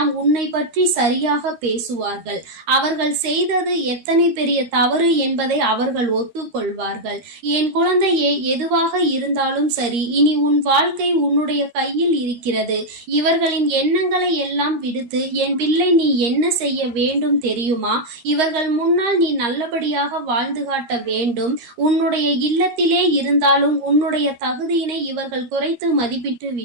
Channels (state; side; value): late; left; 13 ms